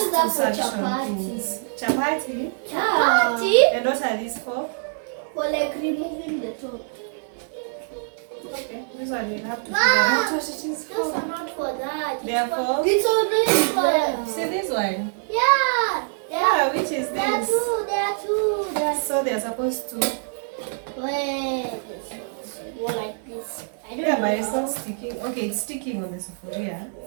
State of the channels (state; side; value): silent; left; digital silence